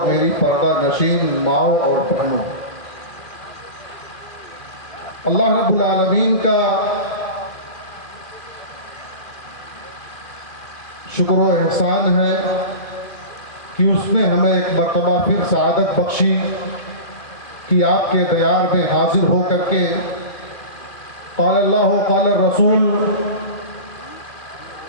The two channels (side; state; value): right; late; 2.3 ms